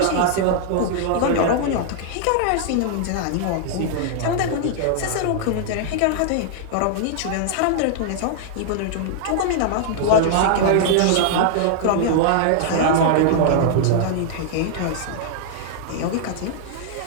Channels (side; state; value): both; different; correlation -0.01